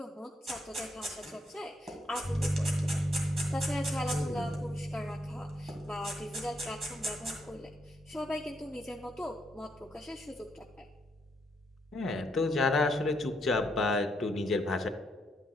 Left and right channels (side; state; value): both; normal; correlation 0.76